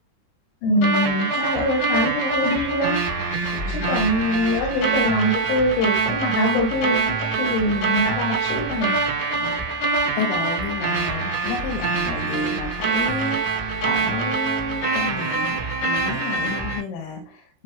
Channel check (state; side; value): late; right; 26 ms